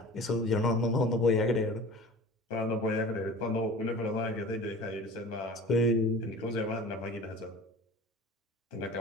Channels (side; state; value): both; normal; correlation 0.41